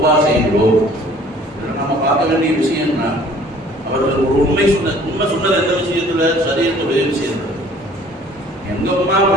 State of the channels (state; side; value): normal; both; correlation 0.53